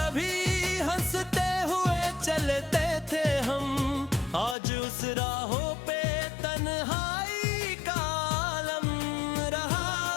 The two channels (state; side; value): drops out; right; at 4.5 s